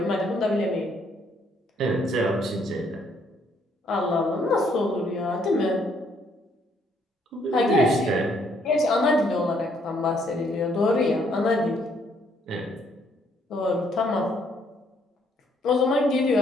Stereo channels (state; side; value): normal; both; correlation 0.68